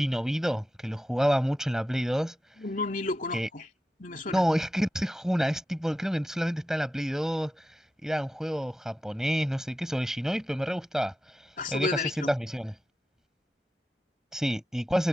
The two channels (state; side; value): normal; both; correlation 0.91